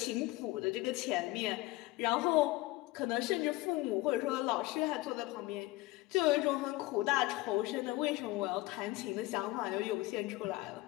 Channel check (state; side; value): quieter; right; 19.6 dB